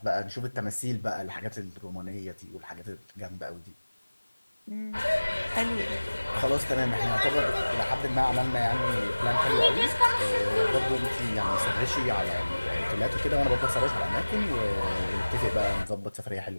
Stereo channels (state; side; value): inverted; both; correlation -1.00